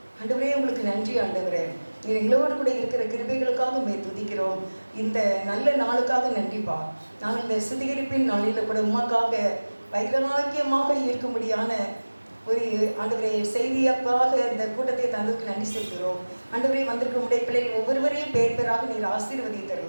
ஆண்டவரே உங்களுக்கு நன்றி ஆண்டவரே. நீர் எங்களோடு கூட இருக்கிற கிருபைகளுக்காக உம்மை துதிக்கிறோம். இந்த நல்ல நாளுக்காக நன்றிப்பா. நாங்கள் இந்த சுத்திகரிப்பின் நாளில் கூட உமக்காக வைராக்கியமாக இருக்கும்படியான ஒரு ஆண்டவரே செய்தியாக்காக இந்த கூட்டத்தை தந்ததுக்கு நன்றி செலுத்துகிறோம். ஆண்டவரே, வந்திருக்க உடைய பிள்ளைகள் ஒவ்வொருவரையும் பேர் பேராக நீர்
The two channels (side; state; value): both; inverted; correlation -1.00